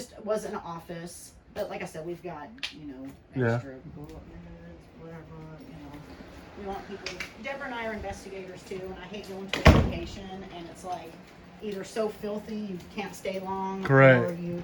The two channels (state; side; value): identical; both; correlation 1.00